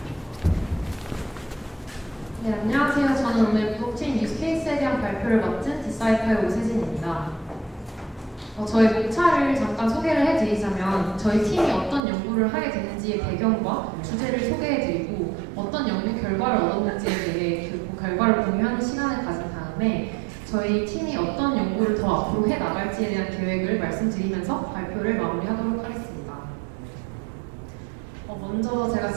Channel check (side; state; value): left; drops out; at 12.0 s